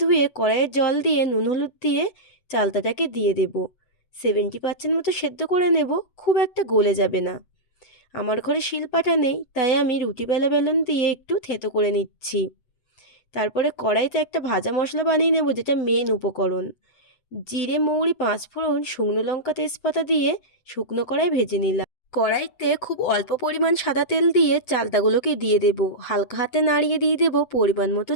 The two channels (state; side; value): late; right; 8.0 ms